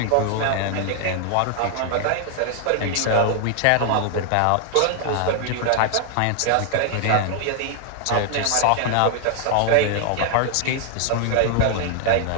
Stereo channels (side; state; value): both; different; correlation 0.00